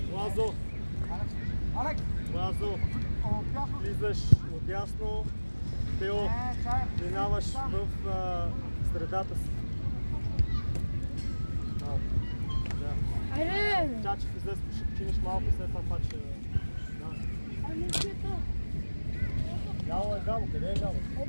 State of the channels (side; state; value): both; inverted; correlation -1.00